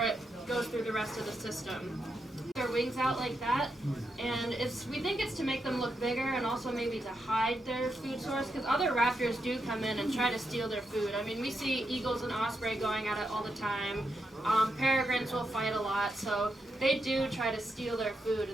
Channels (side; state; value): both; normal; correlation 0.83